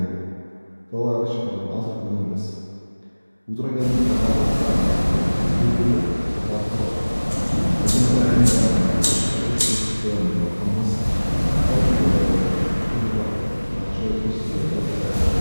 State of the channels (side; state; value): both; inverted; correlation -1.00